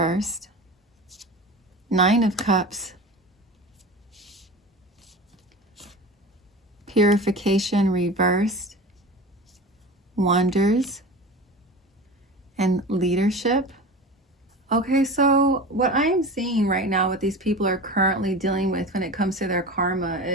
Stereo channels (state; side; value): normal; both; correlation 0.32